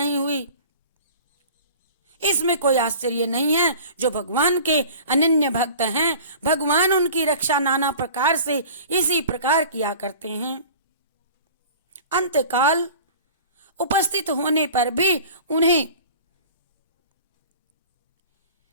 हुई। इसमें कोई आश्चर्य नहीं है। जो भगवान के अनन्य भक्त हैं, भगवान उनकी रक्षा नाना प्रकार से इसी प्रकार किया करते हैं। अंतकाल उपस्थित होने पर भी उन्हें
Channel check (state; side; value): inverted; both; correlation -0.43